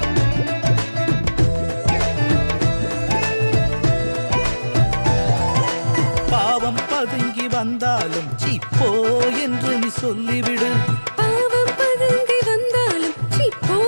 பாவம் பதுங்கி வந்தாலும் சீப்போ என்று நீ சொல்லிவிடு. பாவம் பதுங்கி வந்தாலும் சீப்போ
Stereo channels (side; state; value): both; inverted; correlation -1.00